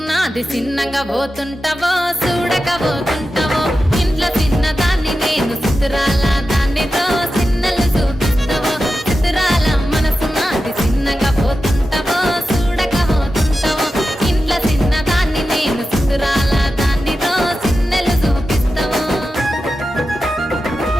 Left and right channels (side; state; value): both; normal; correlation 0.91